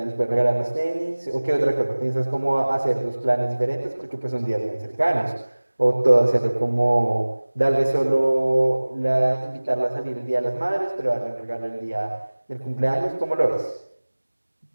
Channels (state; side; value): inverted; both; correlation -1.00